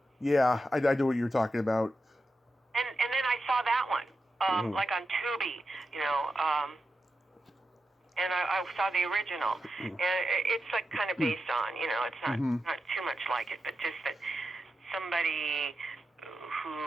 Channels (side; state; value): both; normal; correlation 0.89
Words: Yeah, I know what you're talking about. And then I saw that one, like on Tubi, and I saw the original, and it's like kind of based on, it's not too much like it, but just that somebody